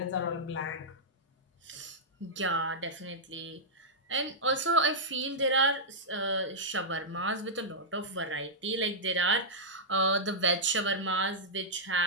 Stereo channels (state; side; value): normal; both; correlation -0.10